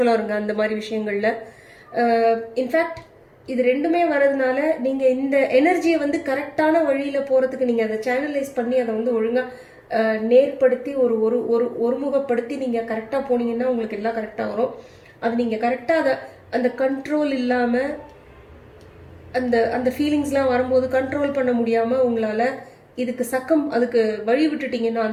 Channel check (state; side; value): identical; both; correlation 1.00